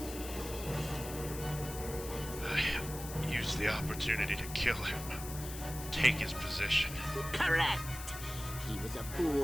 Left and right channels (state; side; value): noise; left; hiss, 11 dB below the sound